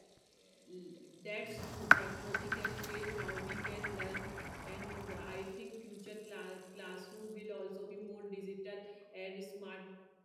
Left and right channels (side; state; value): both; identical; correlation 1.00